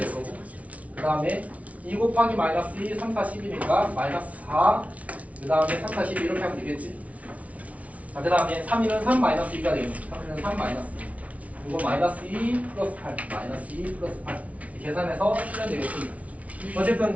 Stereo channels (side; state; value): left; late; 0.067 ms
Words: 거고. 그 다음에 2 곱하기 마이너스 2, 3, 4, 10이니까 마이너스 4. 그 다음에 3, 4, 12 이렇게 하면 되겠지. 자, 그 다음에 3, 2는 3 마이너스 2가 되겠네. 3, 2는 3 마이너스 2. 이거 마이너스 2 플러스 8. 마이너스 2 플러스 8. 계산해서 풀면 되겠습니다.